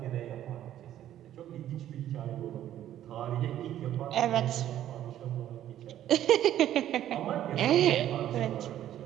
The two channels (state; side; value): quieter; left; 11.9 dB